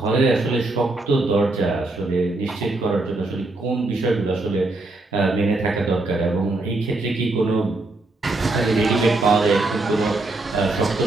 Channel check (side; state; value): left; quieter; 3.0 dB